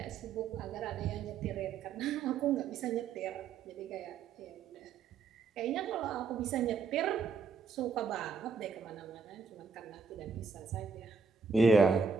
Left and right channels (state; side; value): quieter; left; 5.2 dB